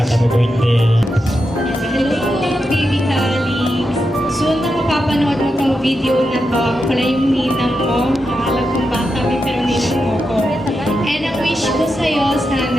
Happy birthday. Hello, baby Calix. Soon na mapapanood mo tong video na to. Ako pala yung ninang mo. Nakalag kong bata kami pero ninang mo ko. And ang wish ko sa'yo,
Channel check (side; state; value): both; normal; correlation 0.87